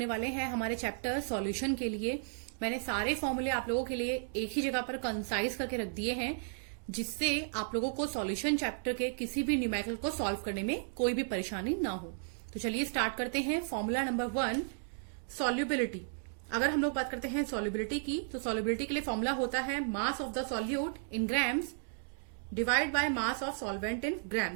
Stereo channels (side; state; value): left; silent; digital silence